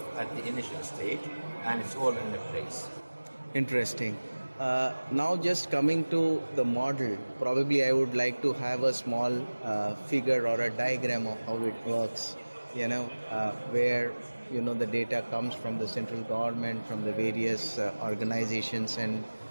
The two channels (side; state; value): both; inverted; correlation -1.00